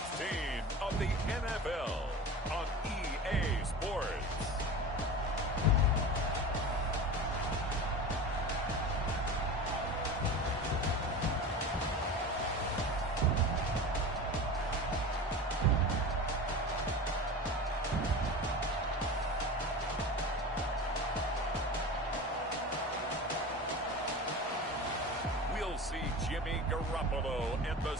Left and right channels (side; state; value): both; normal; correlation 0.31